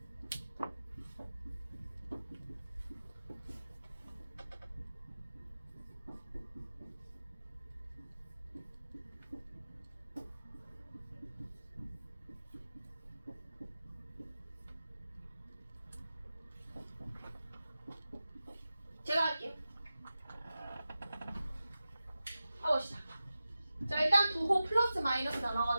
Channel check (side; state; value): both; inverted; correlation -0.94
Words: 제가 할게요. 해봅시다. 자, 일단 부호 플러스 마이너스